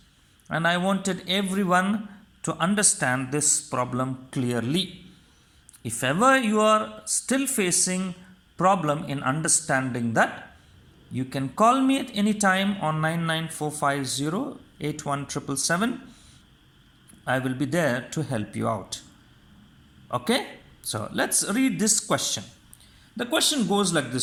and I wanted everyone to understand this problem clearly. If ever you are still facing problem in understanding that, you can call me at any time on 99450 I will be there to help you out. Okay, so let's read this question. The question goes like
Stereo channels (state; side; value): identical; both; correlation 1.00